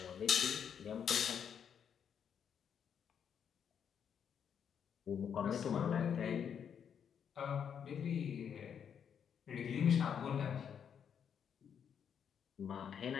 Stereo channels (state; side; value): quieter; right; 7.9 dB